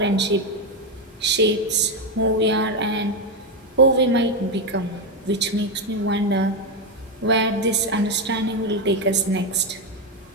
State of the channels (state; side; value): normal; both; correlation 0.07